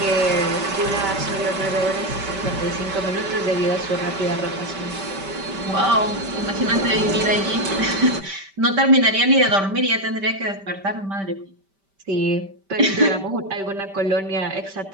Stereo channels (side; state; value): left; late; 5.1 ms